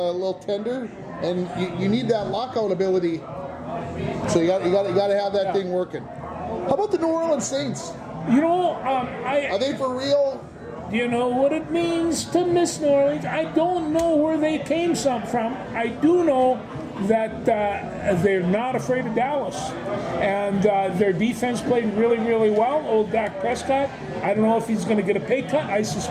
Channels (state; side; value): identical; both; correlation 1.00